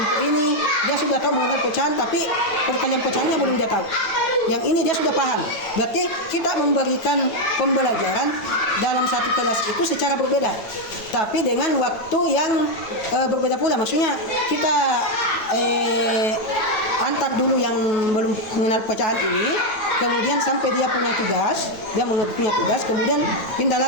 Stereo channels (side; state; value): right; late; 9.3 ms